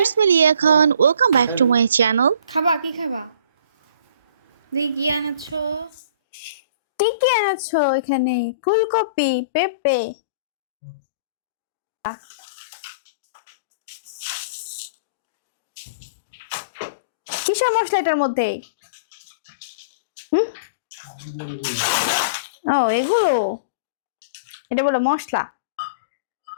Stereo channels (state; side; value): inverted; both; correlation -0.43